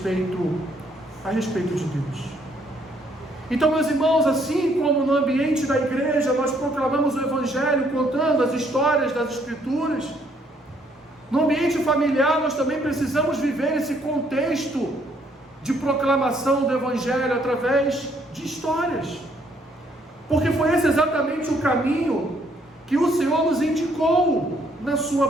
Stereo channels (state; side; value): normal; both; correlation 0.67